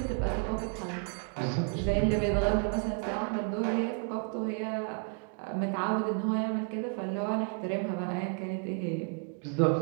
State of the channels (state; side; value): quieter; left; 37.3 dB